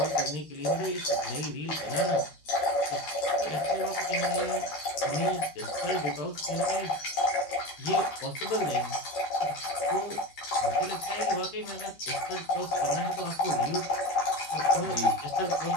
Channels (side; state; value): right; late; 13 ms